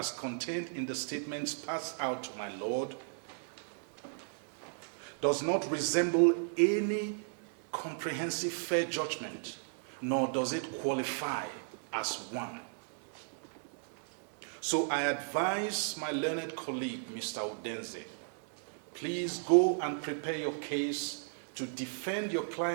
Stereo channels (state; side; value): silent; left; digital silence